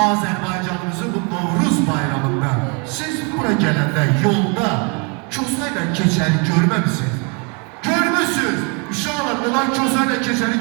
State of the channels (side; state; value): left; quieter; 33.8 dB